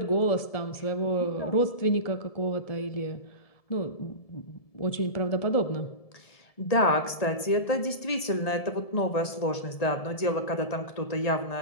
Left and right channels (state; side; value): late; right; 1.7 ms